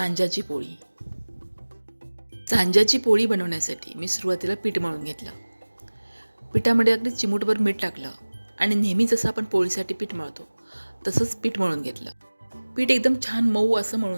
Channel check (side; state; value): both; inverted; correlation -1.00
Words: पोळी. सांज्याची पोळी बनवण्यासाठी मी सुरुवातीला पीठ मळून घेतलं. पिठामध्ये अगदी चिमूटभर मीठ टाकलं आणि नेहमी जसं आपण पोळीसाठी पीठ मळतो तसंच पीठ मळून घेतलं. पीठ एकदम छान मऊ असं